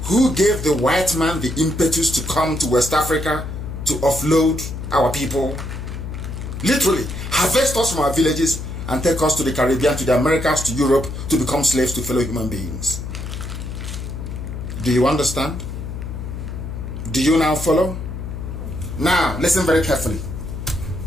Who gave the white man the impetus to come to West Africa to offload our people? Literally, harvest us from our villages and take us to the Caribbean, to the Americas, to Europe, to become slaves to fellow human beings. Do you understand? Do you now follow? Now, listen very carefully.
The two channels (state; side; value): noise; left; hum, 7 dB below the sound